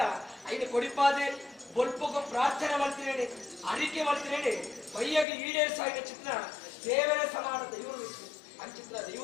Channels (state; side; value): drops out; right; at 5.2 s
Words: ಐದು ಕೊಡಿಪಾದೆ ಬೊಲ್ಪಗೂ ಪ್ರಾರ್ಥನೆ ಮಾಡ್ತೀನಿ ಅರಿಕೆ ಮಾಡ್ತೀನಿ ಬೈಯಗೆ ಈಡೇರಿಸಾಗಿನ ಚಿತ್ರ ದೇವರ ಸಮಾನ ದೈವರು ಅಂಚಿತ್ರ